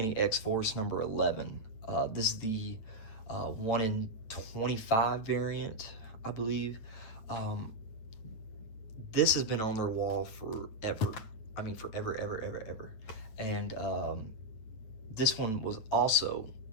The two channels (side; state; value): right; late; 9.2 ms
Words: X-Force number 11. This is the 1 in 25 variant, I believe. This has been on their wall forever. I mean, forever, ever. And this one was also